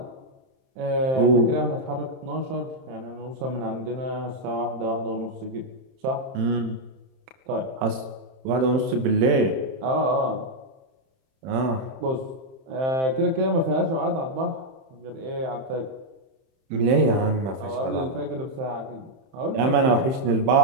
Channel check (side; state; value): left; late; 31 ms